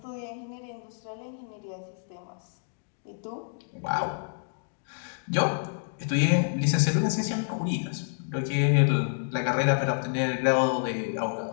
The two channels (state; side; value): silent; right; digital silence